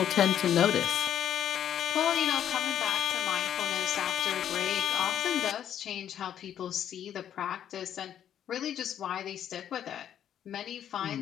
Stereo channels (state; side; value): quieter; right; 10.0 dB